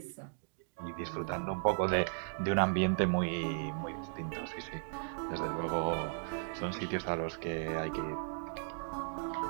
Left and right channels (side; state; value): left; silent; digital silence